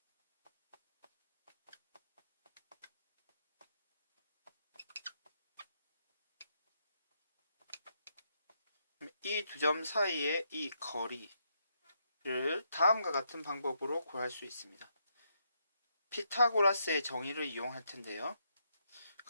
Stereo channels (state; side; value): inverted; both; correlation -0.78